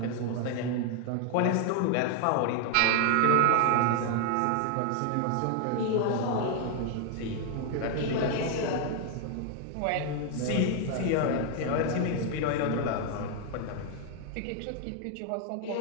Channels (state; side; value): different; both; correlation 0.00